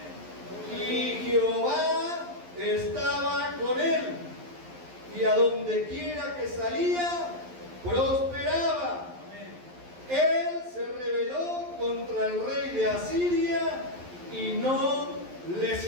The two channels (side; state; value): left; late; 11 ms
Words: Y Jehová estaba con él, y a donde quiera que salía, prosperaba. Él se rebeló contra el rey de Asiria y no le